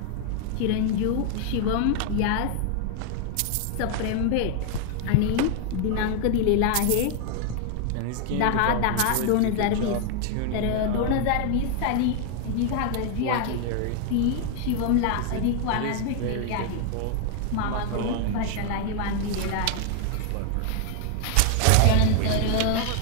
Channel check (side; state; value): both; different; correlation 0.00